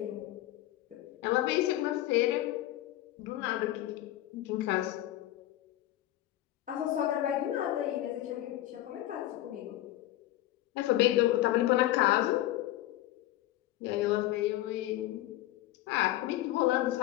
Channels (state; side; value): quieter; right; 15.0 dB